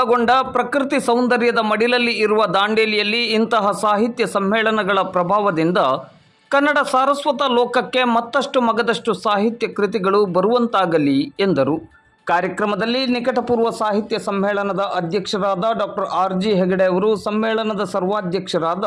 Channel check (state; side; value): identical; both; correlation 1.00